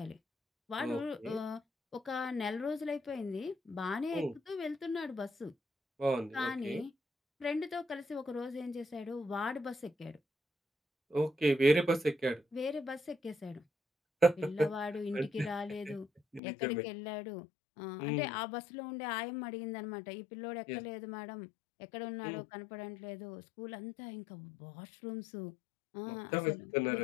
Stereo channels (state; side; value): drops out; right; at 16.4 s